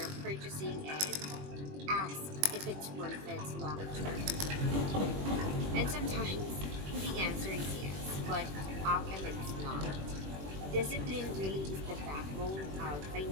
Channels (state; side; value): late; left; 21 ms